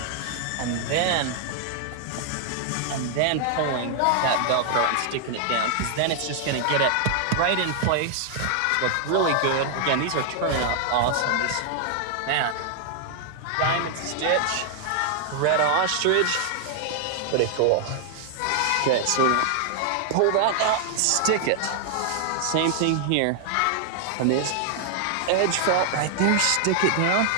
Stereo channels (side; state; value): both; different; correlation 0.00